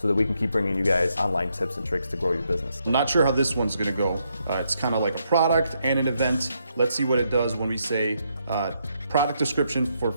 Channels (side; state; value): both; inverted; correlation -0.78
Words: that we can keep bringing you guys online tips and tricks to grow your business. I'm not sure how this one's gonna go. It's kind of like a product and an event. Let's see what it does when we say product description for